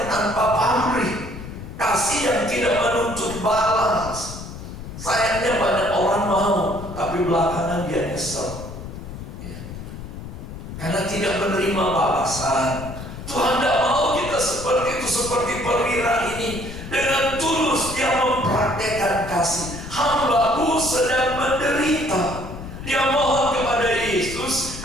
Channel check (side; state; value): left; noise; rumble, 10 dB below the sound